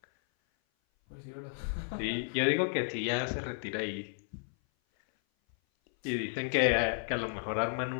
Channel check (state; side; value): silent; right; 56 dB below the other